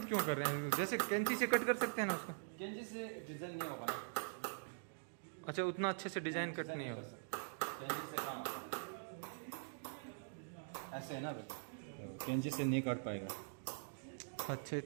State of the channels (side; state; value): left; silent; digital silence